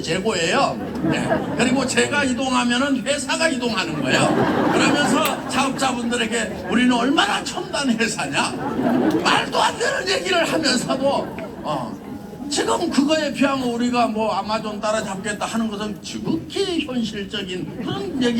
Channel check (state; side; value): identical; both; correlation 1.00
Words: 재고예요. 네. 그리고 제가 이동하면은 회사가 이동하는 거예요. 그러면서 사업자분들에게 우리는 얼마나 첨단 회사냐, 말도 안 되는 얘기를 하면서도 지금 그거에 비하면 우리가 뭐 아마존 따라잡겠다 하는 것은 지극히 현실적인 그런